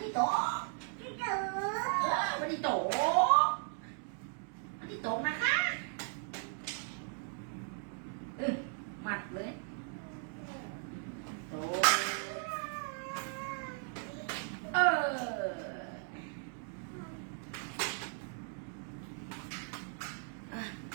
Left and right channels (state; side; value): silent; left; 53 dB below the other